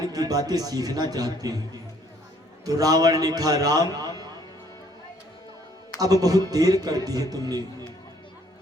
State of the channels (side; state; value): both; normal; correlation 0.63